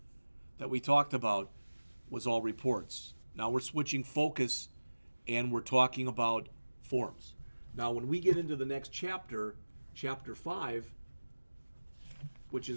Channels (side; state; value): both; inverted; correlation -1.00